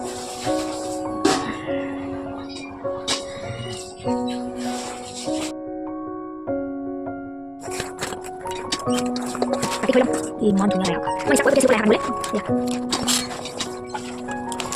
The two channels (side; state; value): both; identical; correlation 1.00